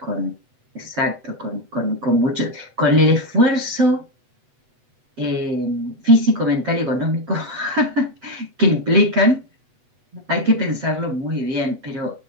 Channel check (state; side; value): late; left; 8.1 ms